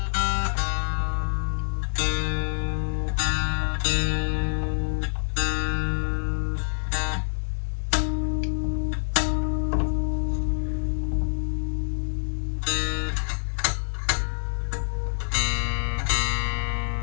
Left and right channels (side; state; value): right; silent; digital silence